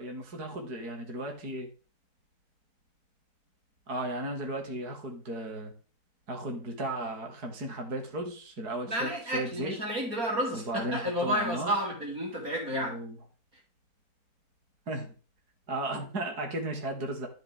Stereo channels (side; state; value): left; late; 4.3 ms